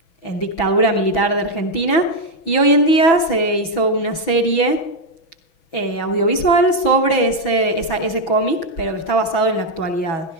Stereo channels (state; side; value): late; right; 6.1 ms